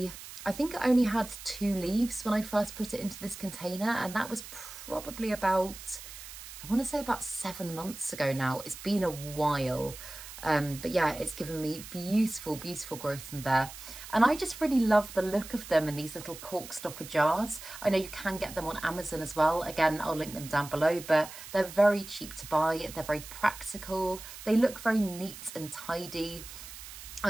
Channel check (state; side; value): noise; right; hiss, 13 dB below the sound